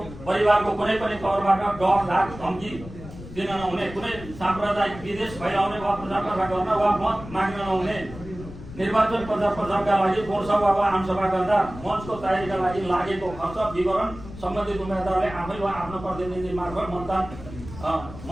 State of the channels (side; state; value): left; noise; rumble, 14 dB below the sound